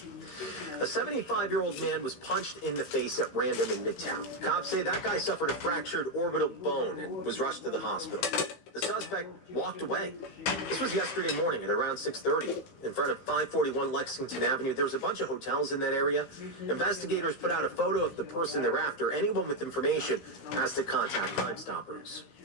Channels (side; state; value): right; late; 15 ms